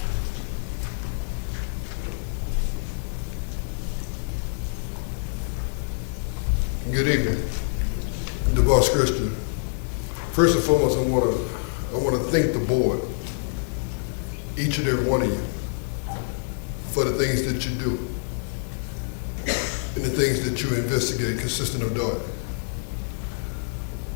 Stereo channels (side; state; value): right; silent; digital silence